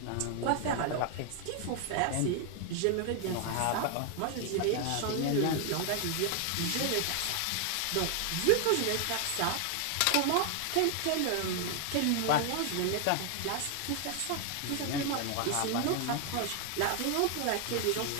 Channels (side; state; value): both; different; correlation 0.00